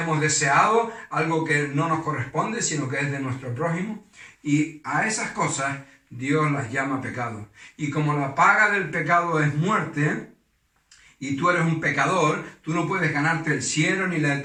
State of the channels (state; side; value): identical; both; correlation 1.00